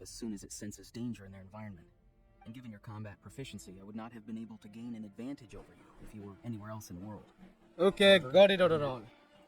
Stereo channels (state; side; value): identical; both; correlation 1.00